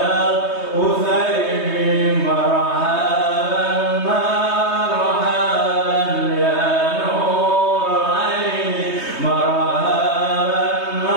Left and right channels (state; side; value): late; right; 3.2 ms